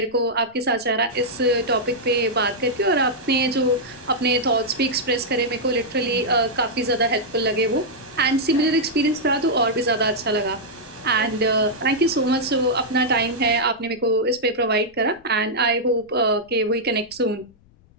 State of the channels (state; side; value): noise; left; rumble, 29 dB below the sound